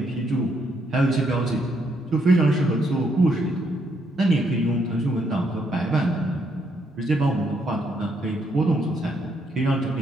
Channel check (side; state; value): both; normal; correlation 0.74